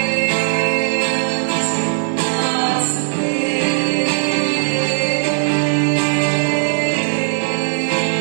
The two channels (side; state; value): left; silent; digital silence